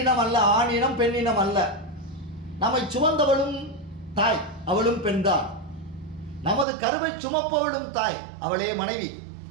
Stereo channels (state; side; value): drops out; left; at 6.7 s